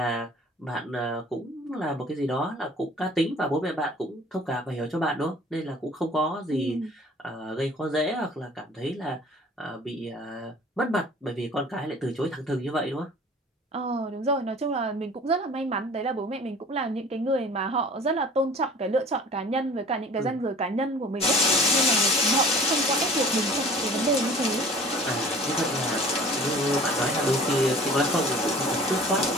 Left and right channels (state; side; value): normal; both; correlation 0.47